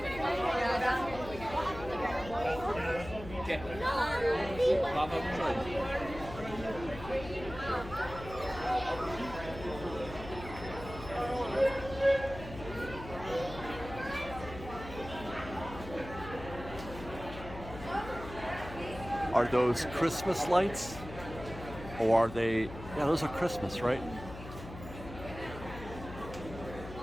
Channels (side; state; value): left; noise; hum, 13 dB below the sound